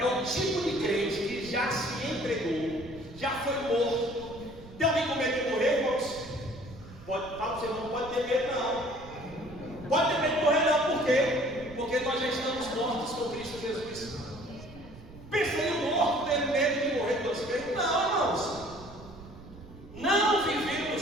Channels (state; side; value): noise; right; rumble, 18 dB below the sound